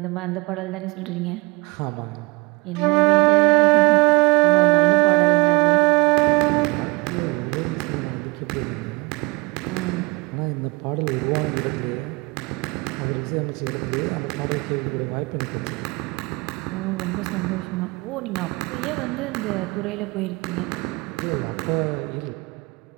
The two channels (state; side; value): quieter; left; 25.9 dB